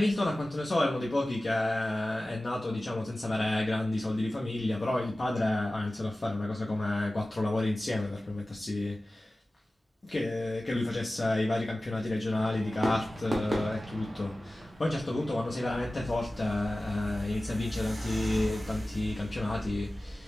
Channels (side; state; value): both; normal; correlation 0.96